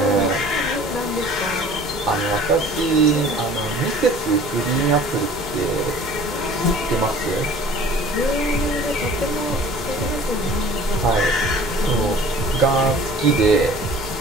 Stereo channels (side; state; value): both; normal; correlation 0.47